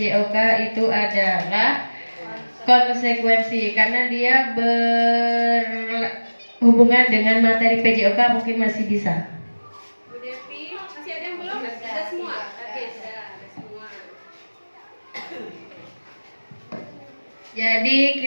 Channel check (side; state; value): both; inverted; correlation -1.00